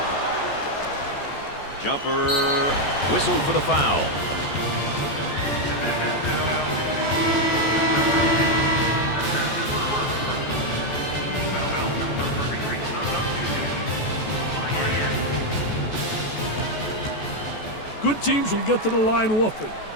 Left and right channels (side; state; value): right; late; 14 ms